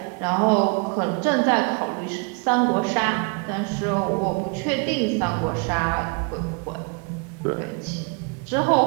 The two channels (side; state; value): left; quieter; 33.1 dB